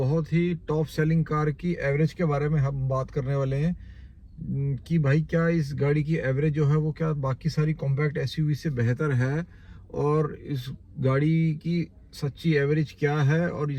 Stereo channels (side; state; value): both; identical; correlation 1.00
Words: ही टॉप सेलिंग कार की एवरेज के बारे में हम बात करने वाले हैं। कि भाई क्या इस गाड़ी की एवरेज जो है वो क्या बाकी सारी कॉम्पैक्ट एसयूवी से बेहतर है, और इस गाड़ी की सच्ची एवरेज क्या है, और